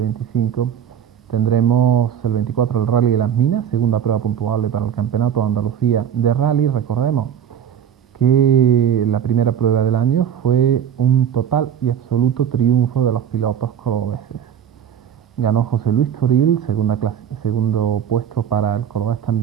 tendremos el 24 el Rally de las Minas, segunda prueba puntuable para el Campeonato de Andalucía de Rally. Recordemos que la primera prueba del año fue un total y absoluto triunfo de los pilotos cordobeses. Ganó José Luis Toril, segundo puesto para el cordobés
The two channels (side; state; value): left; quieter; 9.1 dB